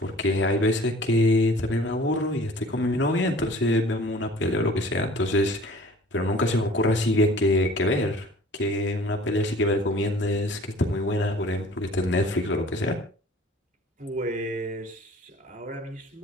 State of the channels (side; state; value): both; normal; correlation 0.48